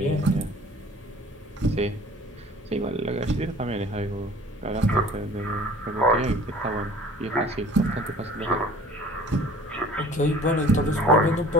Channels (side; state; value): both; normal; correlation 0.49